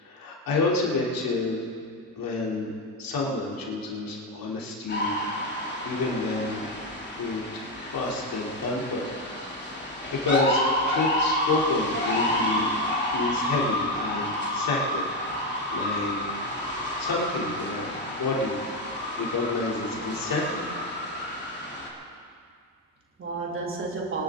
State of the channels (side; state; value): both; normal; correlation 0.09